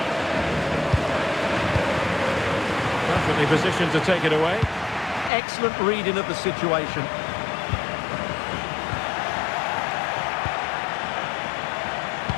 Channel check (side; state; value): right; drops out; at 5.3 s